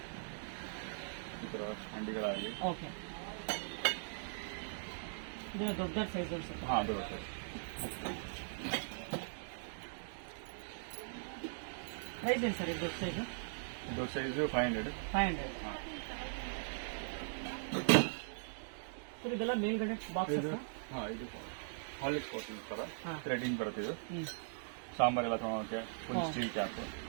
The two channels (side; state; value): left; silent; digital silence